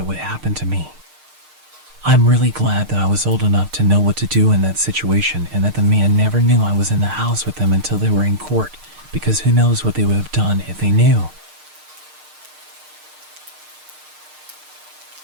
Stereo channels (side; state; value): left; late; 6.5 ms